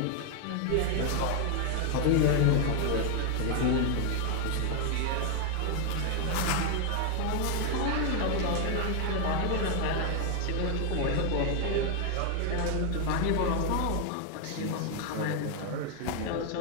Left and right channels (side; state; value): both; different; correlation 0.01